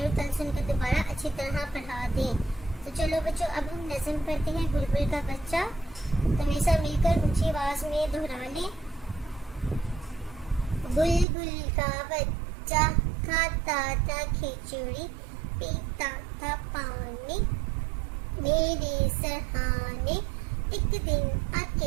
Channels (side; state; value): left; drops out; at 11.2 s